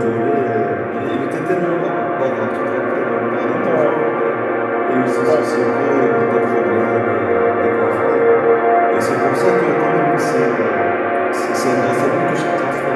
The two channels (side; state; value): both; identical; correlation 1.00